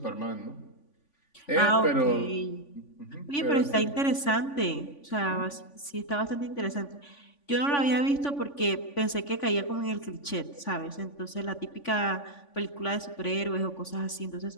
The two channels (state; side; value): late; right; 3.5 ms